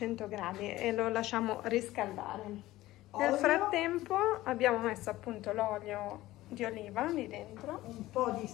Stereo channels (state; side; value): quieter; right; 16.7 dB